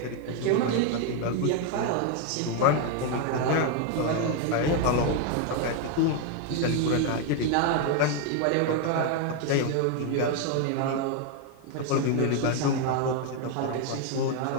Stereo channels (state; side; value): different; both; correlation 0.01